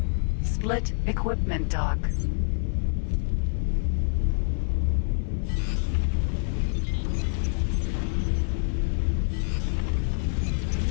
Split Equipment Dock.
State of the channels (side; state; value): right; silent; digital silence